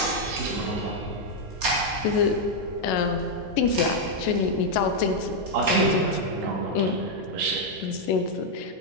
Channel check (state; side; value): normal; both; correlation -0.01